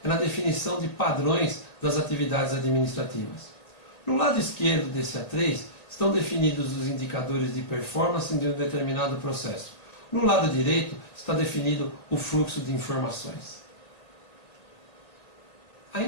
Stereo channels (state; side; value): late; right; 1.8 ms